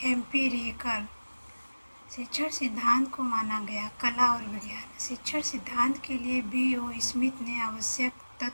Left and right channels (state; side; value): inverted; both; correlation -1.00